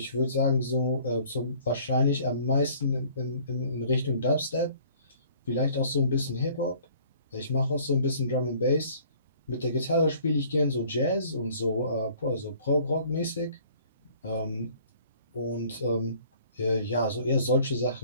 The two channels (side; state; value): both; inverted; correlation -0.55